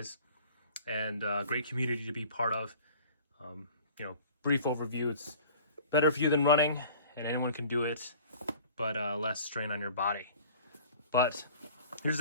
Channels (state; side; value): inverted; both; correlation -0.47